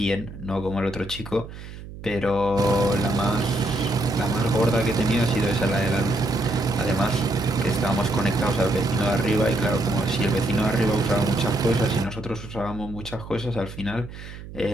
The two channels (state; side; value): noise; right; hum, 13 dB below the sound